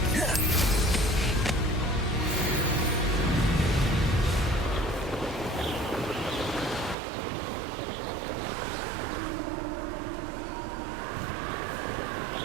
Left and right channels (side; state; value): left; drops out; at 7.0 s